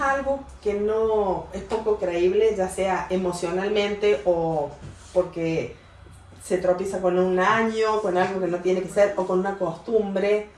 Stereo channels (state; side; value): identical; both; correlation 1.00